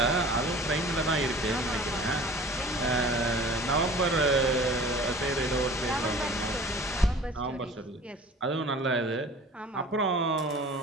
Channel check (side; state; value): both; normal; correlation 0.44